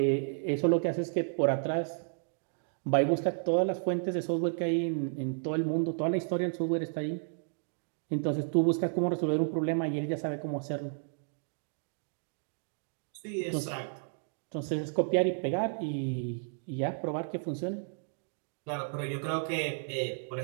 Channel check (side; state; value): left; silent; digital silence